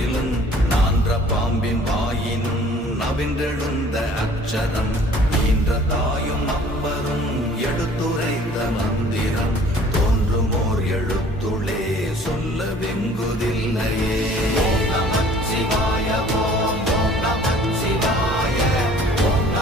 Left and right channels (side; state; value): both; normal; correlation 0.52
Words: நான்ற பாம்பின் வாயினும் நவின்றெழுந்த அக்ஷரம், ஈன்ற தாயும் அப்பரும் எடுத்துரைந்த மந்திரம், தோன்றுமோர் எழுத்துளே சொல்ல வெங்குதில்லையே. ஓம் நமச்சிவாய ஓம் ஓம் நமச்சிவாய ஓம்